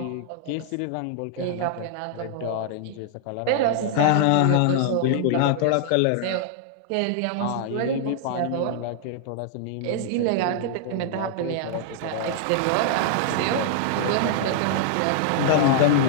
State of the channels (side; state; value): both; different; correlation -0.01